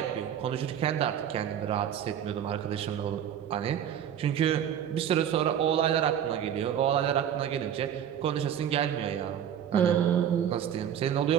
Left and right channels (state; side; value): quieter; left; 9.4 dB